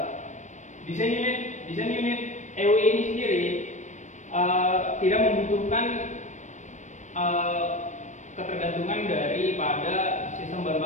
Desain unit EUI ini sendiri tidak membutuhkan ketergantungan daripada sistem bahan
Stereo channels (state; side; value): late; right; 0.35 ms